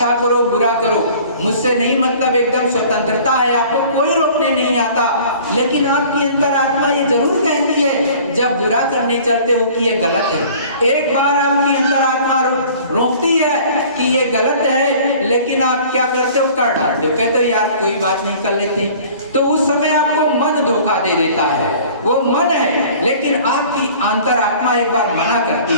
करो बुरा करो, मुझसे नहीं मतलब, एकदम स्वतंत्रता है, आपको कोई रोकने नहीं आता। लेकिन आपकी अंतरात्मा ये जरूर कहती है जब बुरा करने चलते हो कि ये गलत है। एक बार आपकी अंतरात्मा रोकती है कि ये गलत है, लेकिन आप क्या करते हो, कर डालते हो, कहते हो यार कोई बात नहीं कर लेते। तो उस समय आपको मन धोखा दे देता है, वो मन है, लेकिन आपकी अंतरात्मा एक बार मना करती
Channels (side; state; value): both; inverted; correlation -0.48